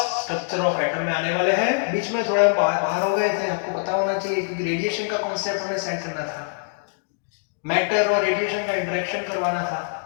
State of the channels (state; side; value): silent; right; digital silence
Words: स्ट्रक्चर ऑफ एटम में आने वाले हैं। बीच में थोड़ा बाहर हो गए थे, आपको पता होना चाहिए क्योंकि रेडिएशन का कॉन्सेप्ट हमें सेट करना था, मैटर और रेडिएशन का इंटरेक्शन करवाना था,